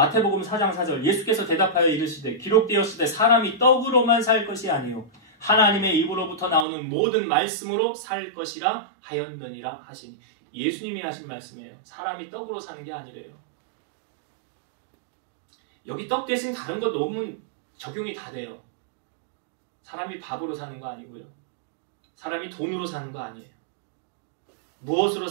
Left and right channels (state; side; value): drops out; left; at 6.7 s